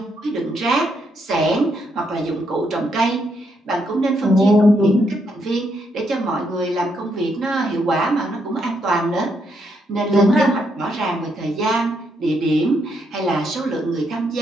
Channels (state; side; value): normal; both; correlation 0.76